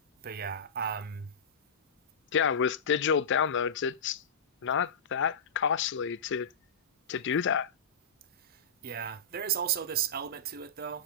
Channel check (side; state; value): right; quieter; 3.6 dB